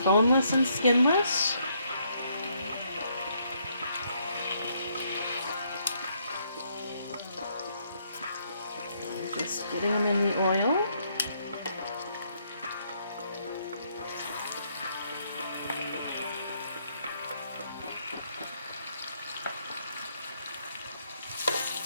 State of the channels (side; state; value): both; inverted; correlation -0.72